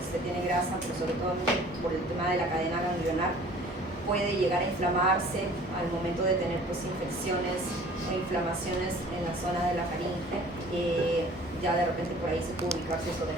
tiene grasa, pero sobre todo por el tema de la cadena ganglionar, puede llegar a inflamarse al momento de tener pues infecciones o inflamaciones en la zona de la faringe. Ya de repente por ahí se puede ubicar si es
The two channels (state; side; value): normal; both; correlation 0.49